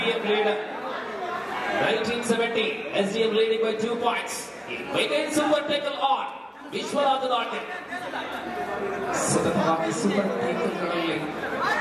1970 SDM leading by 2 points. Again super tackle on Vishwaraj ದಾಟೆ ಸತತವಾಗಿ ಸೂಪರ್ ಟೇಕಲ್ಗಳಲ್ಲಿ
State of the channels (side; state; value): both; identical; correlation 1.00